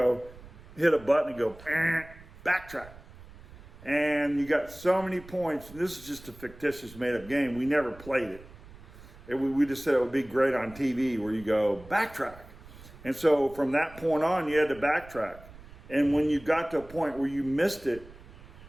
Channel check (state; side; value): noise; right; rumble, 19 dB below the sound